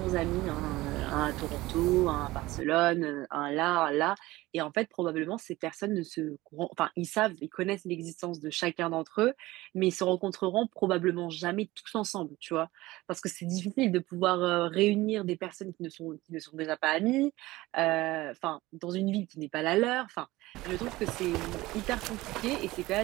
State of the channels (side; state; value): left; quieter; 18.7 dB